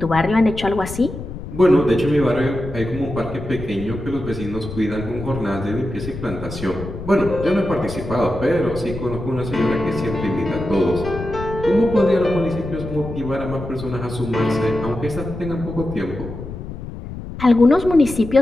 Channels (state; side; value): noise; left; rumble, 10 dB below the sound